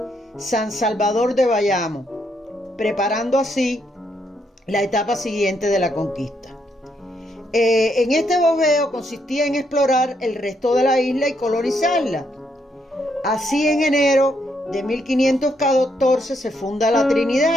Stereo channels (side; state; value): both; normal; correlation 0.76